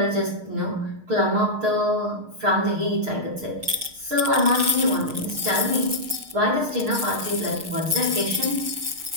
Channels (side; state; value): left; late; 6.5 ms